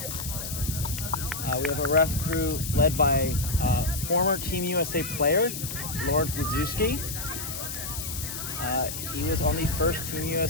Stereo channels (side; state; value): left; noise; hiss, 6 dB below the sound